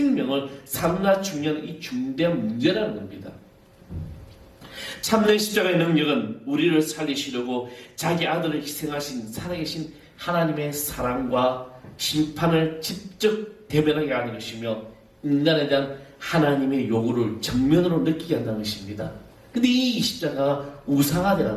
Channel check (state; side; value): identical; both; correlation 1.00